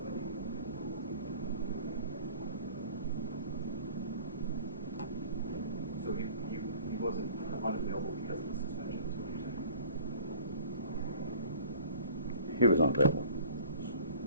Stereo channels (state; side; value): inverted; both; correlation -0.48